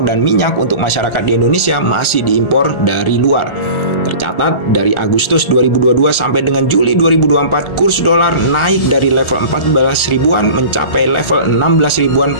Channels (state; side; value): late; right; 1.4 ms